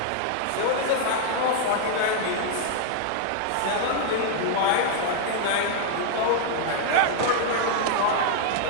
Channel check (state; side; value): different; both; correlation 0.00